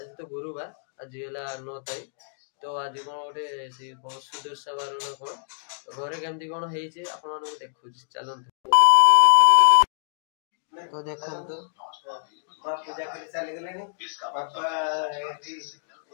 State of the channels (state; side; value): silent; right; digital silence